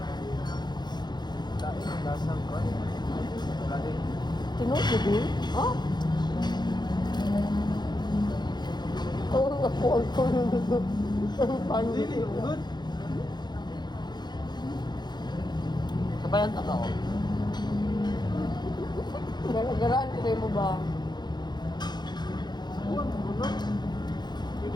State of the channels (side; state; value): right; late; 0.21 ms